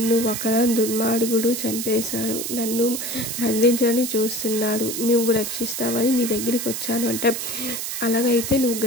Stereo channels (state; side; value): noise; right; hiss, 4 dB below the sound